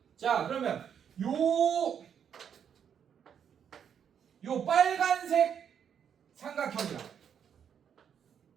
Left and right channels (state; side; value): quieter; left; 8.1 dB